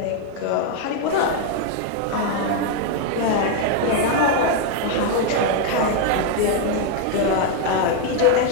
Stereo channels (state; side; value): different; both; correlation 0.00